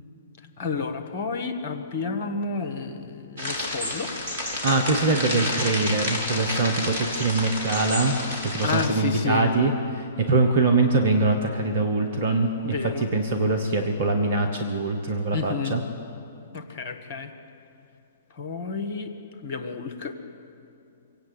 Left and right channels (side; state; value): both; inverted; correlation -0.43